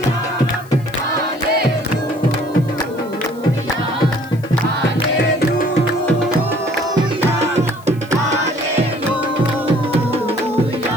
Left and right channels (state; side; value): noise; left; hiss, 25 dB below the sound